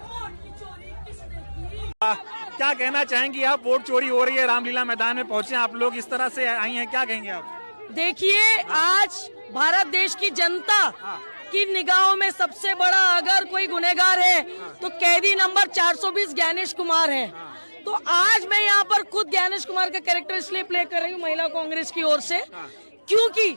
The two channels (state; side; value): inverted; both; correlation -1.00